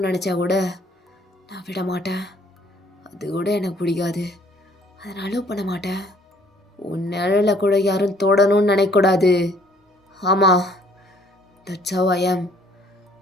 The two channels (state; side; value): normal; both; correlation 0.60